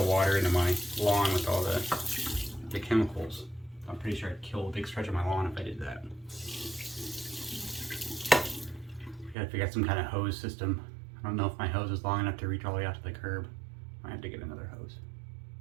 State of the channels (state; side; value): drops out; left; at 9.3 s